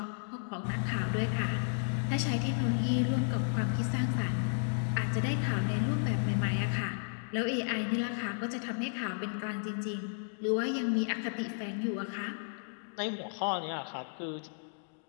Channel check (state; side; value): silent; right; digital silence